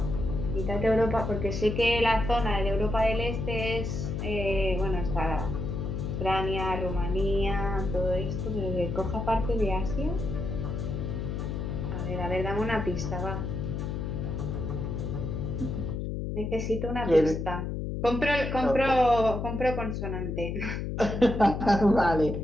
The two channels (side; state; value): left; noise; hum, 3 dB below the sound